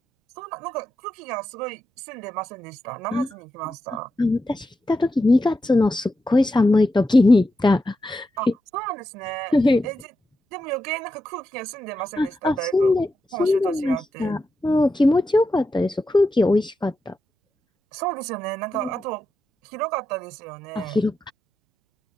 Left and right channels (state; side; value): normal; both; correlation 0.88